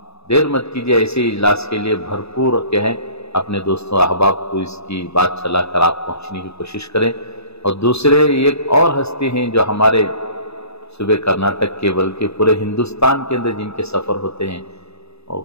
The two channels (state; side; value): late; right; 0.79 ms